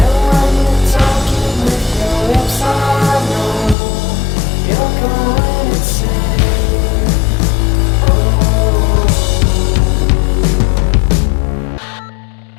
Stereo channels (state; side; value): drops out; right; at 3.8 s